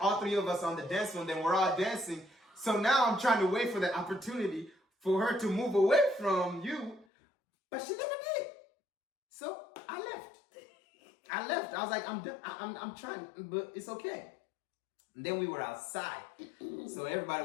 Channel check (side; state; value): right; drops out; at 7.1 s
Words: all three of us on the dance floor, then we're all dancing. So now I'm trying to wait for the opportunity for her to move away from you, but she never did. So I left. I was like, I'm trying, but it's okay. And then we were outside. So everybody